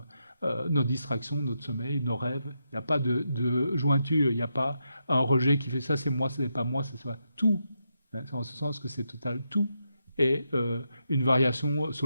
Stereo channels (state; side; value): inverted; both; correlation -0.83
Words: nos distractions, notre sommeil, nos rêves. Il n'y a pas de jointure, il n'y a pas un rejet qui fait ça, c'est moi, ce n'est pas moi, c'est ça. Tout, hein, c'est en ce sens que c'est total, tout est une variation